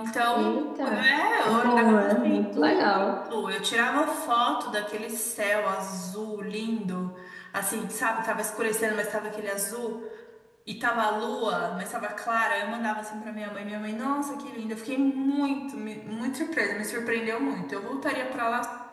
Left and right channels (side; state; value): both; identical; correlation 1.00